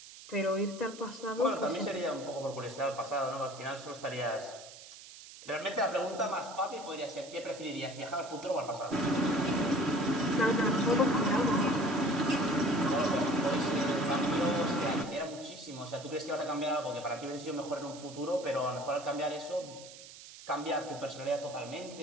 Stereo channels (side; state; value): right; noise; hiss, 16 dB below the sound